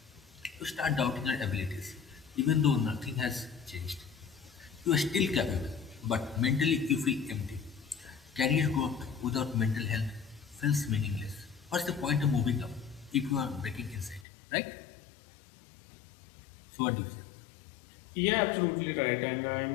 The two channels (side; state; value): right; drops out; at 14.2 s